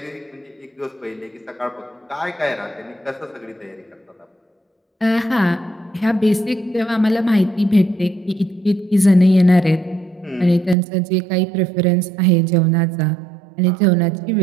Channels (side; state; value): left; drops out; at 10.8 s